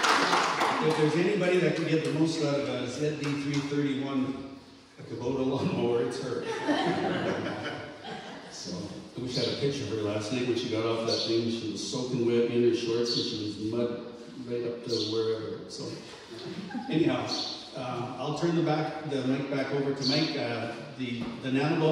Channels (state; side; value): identical; both; correlation 1.00